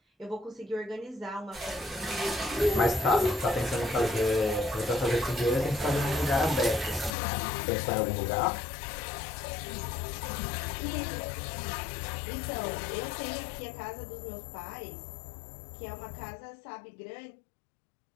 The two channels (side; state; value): right; drops out; at 7.2 s